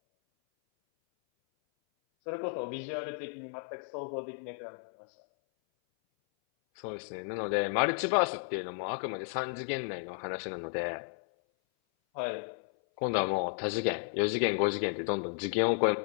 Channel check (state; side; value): silent; right; 56 dB below the other